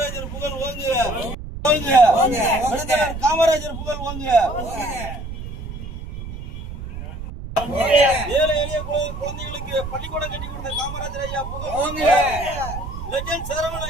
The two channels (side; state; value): right; noise; rumble, 9 dB below the sound